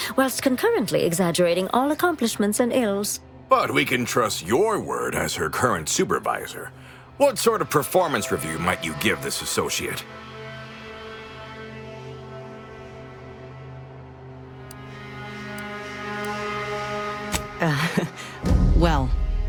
whilst concurrently exaggerating all accomplishments and ills. But we can trust your word as her current supervisor. What sort of performance review might you give this associate? Well,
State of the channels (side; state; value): both; identical; correlation 1.00